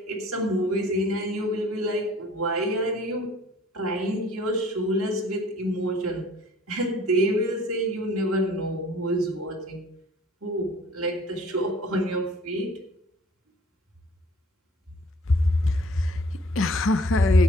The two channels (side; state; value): both; normal; correlation 0.53